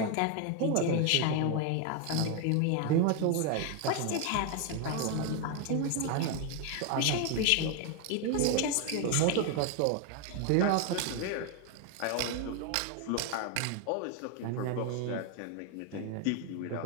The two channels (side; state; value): both; different; correlation 0.01